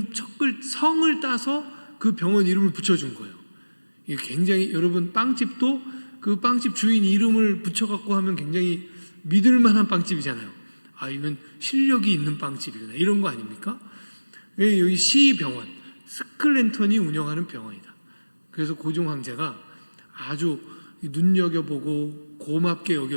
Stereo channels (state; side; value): inverted; both; correlation -1.00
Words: 성을 따서 그 병원 이름을 붙여준 거예요. 이게 굉장히, 여러분 빵집도 그 빵집 주인 이름을 붙여갖고 하면 굉장히 믿을만한 빵집이잖아요. 아, 이건 실력이 있는 빵집이구나, 이런 거 아닙니까? 여기 시병원, 스클랜턴이 운영하는 병원이다. 그래서 고종 황제가 아주 눈여겨보고 고맙게